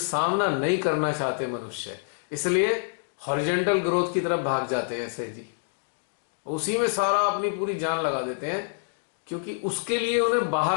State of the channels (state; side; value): silent; right; digital silence